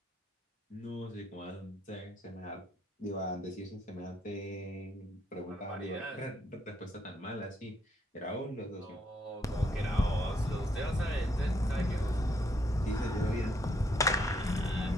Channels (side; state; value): both; normal; correlation 0.73